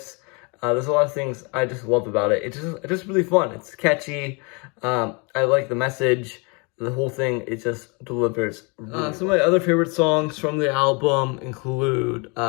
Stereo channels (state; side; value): quieter; right; 31.6 dB